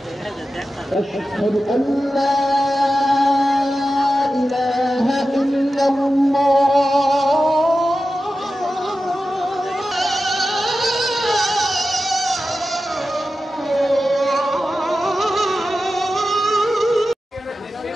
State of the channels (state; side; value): normal; both; correlation 0.93